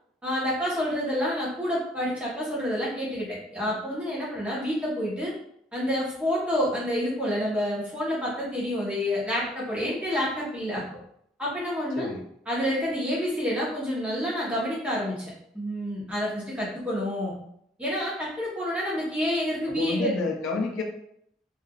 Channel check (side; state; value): both; normal; correlation 0.58